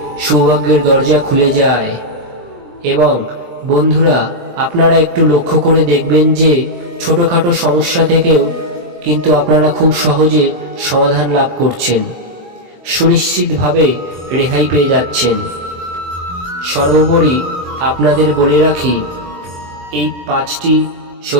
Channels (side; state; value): left; late; 23 ms